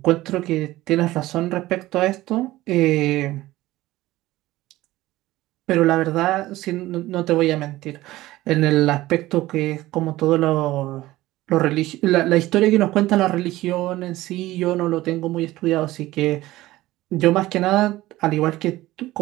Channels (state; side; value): quieter; left; 17.0 dB